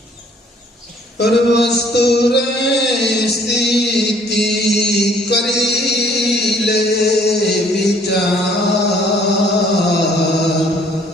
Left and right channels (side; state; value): both; normal; correlation 0.59